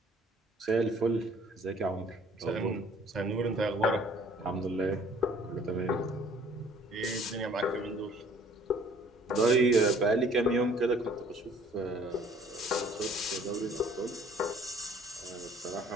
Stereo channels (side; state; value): both; normal; correlation 0.56